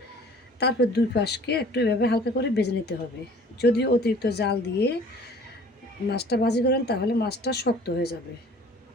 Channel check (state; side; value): normal; both; correlation 0.50